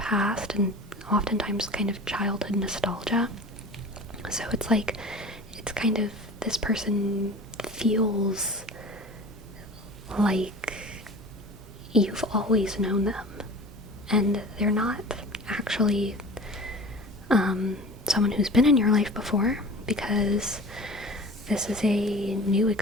and oftentimes kind of childhood nostalgia. So it's like, it's kind of, this person feels like you've always known them, and they're not actually someone who's been in your life before, because this is a new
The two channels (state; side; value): normal; both; correlation 0.39